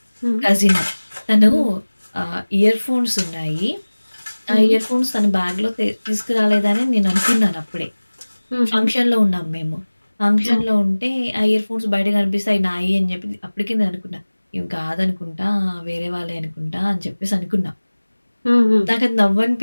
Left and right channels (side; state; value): both; inverted; correlation -1.00